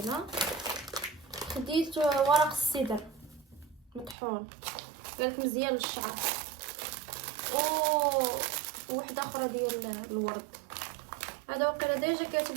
خديت ورق السدر مطحون قالك مزيان للشعر، وواحده اخرى ديال الورد. هذا وقيلا ديجا كاتب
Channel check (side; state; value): left; drops out; at 4.2 s